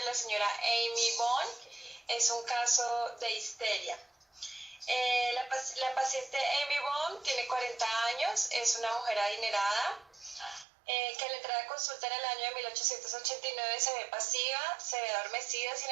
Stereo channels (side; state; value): left; drops out; at 10.7 s